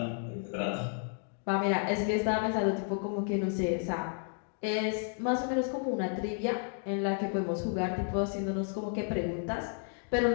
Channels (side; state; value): right; silent; 56 dB below the other